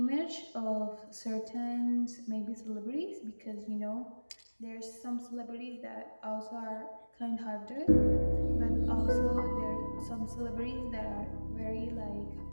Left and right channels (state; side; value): inverted; both; correlation -1.00